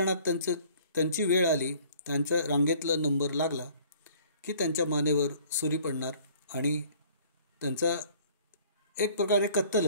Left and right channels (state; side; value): inverted; both; correlation -0.54